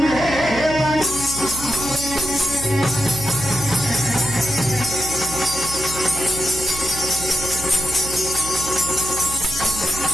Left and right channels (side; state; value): right; noise; hum, 12 dB below the sound